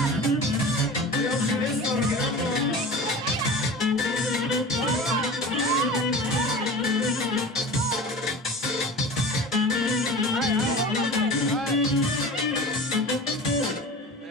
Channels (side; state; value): both; normal; correlation 0.35